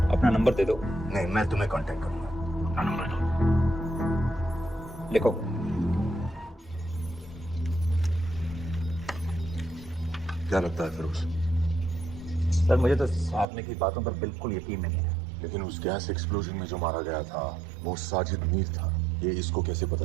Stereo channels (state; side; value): drops out; left; at 13.5 s